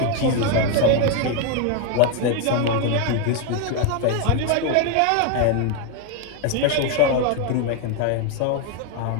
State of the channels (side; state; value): both; different; correlation 0.01